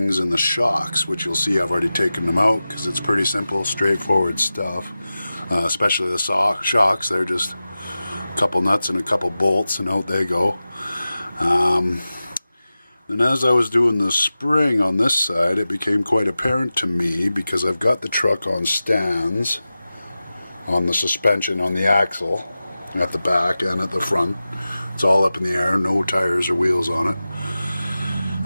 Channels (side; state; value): both; inverted; correlation -0.95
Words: and the shocks, which you'll see I've already taken them out because it's pretty simple, straightforward stuff. Especially the shocks, they're just a couple nuts and a couple bolts and out they go. And as I was doing the spring on this side, it became quite apparent to me because I've got the truck on stands on the suspension on the axle at the back and at the front. It's all up in the air, no tires or wheels on it.